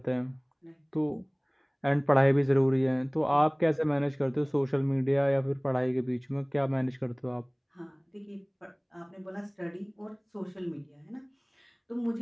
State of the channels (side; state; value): both; identical; correlation 1.00